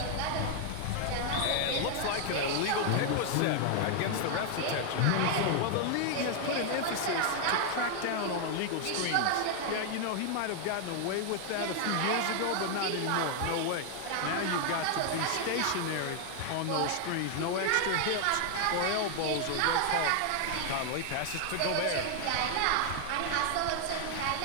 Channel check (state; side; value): different; both; correlation 0.00